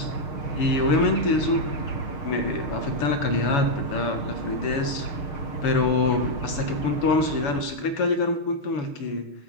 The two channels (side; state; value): right; late; 7.0 ms